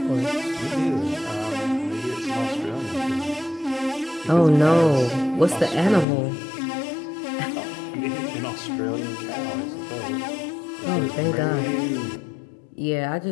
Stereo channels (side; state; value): right; drops out; at 6.1 s